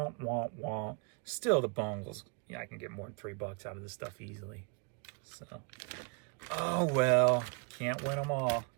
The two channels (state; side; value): quieter; left; 37.9 dB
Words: womp womp. Still the bungles. Yeah, I can get more than $3 out of this stuff easily. So, oh well. Can't win them all.